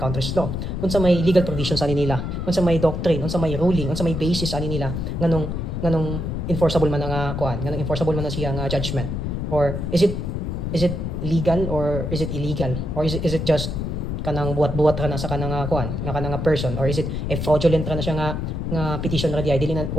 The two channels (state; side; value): noise; left; rumble, 3 dB below the sound